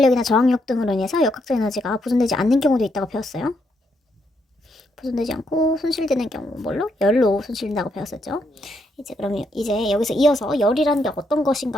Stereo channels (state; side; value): normal; both; correlation 0.77